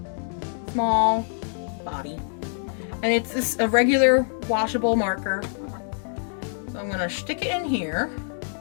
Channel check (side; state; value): right; silent; 62 dB below the other